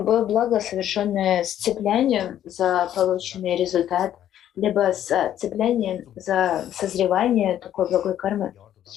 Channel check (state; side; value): quieter; right; 11.2 dB